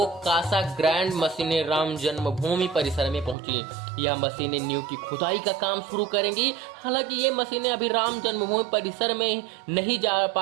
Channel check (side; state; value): left; drops out; at 3.4 s